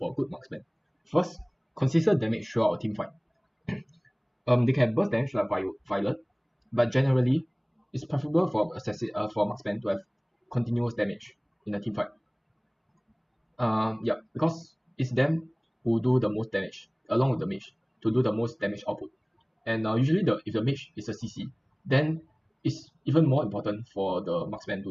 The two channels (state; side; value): identical; both; correlation 1.00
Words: a good marksman. First, consistent damage throughout a team fight. They can burst damage like Violet, but generally, it's preferable for for marksman to have continuous damage in a team fight. Yeah, because it's them who do the most damage along with the mage to do the most damage output. And usually, if the mage is a CC, then it's even more important for the marksman